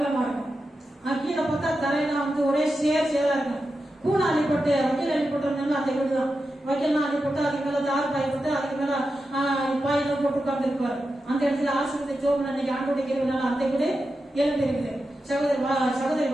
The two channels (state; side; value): normal; both; correlation 0.90